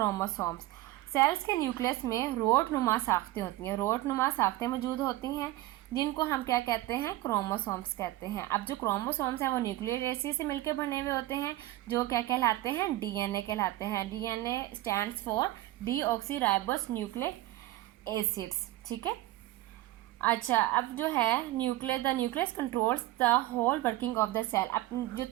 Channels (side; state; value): left; quieter; 16.4 dB